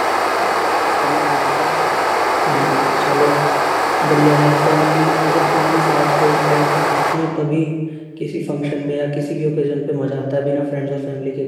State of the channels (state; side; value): identical; both; correlation 1.00